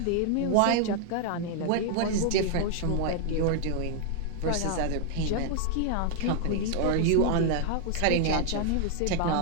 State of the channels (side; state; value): both; different; correlation 0.00